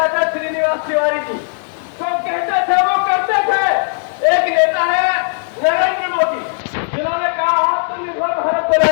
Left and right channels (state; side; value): silent; right; digital silence